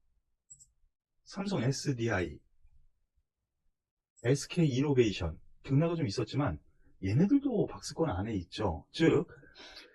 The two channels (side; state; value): both; identical; correlation 1.00